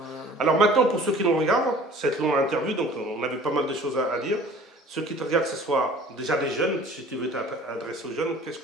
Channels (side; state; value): both; normal; correlation 0.48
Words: Alors maintenant, pour ceux qui nous regardent, cette longue interview, donc on avait pas mal de choses à dire. Ceux qui te regardent, que ce soit déjà des jeunes, si tu veux t'adresser aux jeunes, qu'est-ce